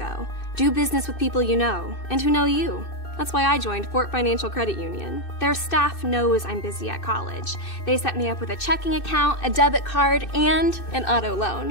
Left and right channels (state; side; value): late; right; 2.6 ms